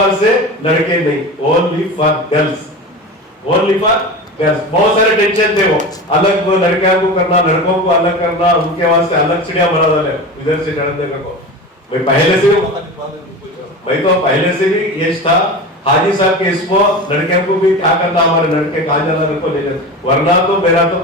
से लड़के नहीं, only for girls, only for girls. बहुत सारे टेंशन थे, वो अलग वो लड़कियों को करना, लड़कों को अलग करना, उनके वास्ते अलग चिड़िया बना डाले इधर से चढ़ने को। मैं पहले से भी ये था हाजी साहब के इसको लड़कियों को भी क्या करना, हमारे लड़के कहाँ जाना लड़को ले जाए, वरना तो मेरा तो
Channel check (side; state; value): both; normal; correlation 0.29